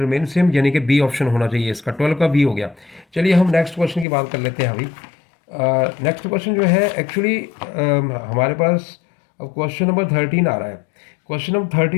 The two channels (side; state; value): right; drops out; at 4.0 s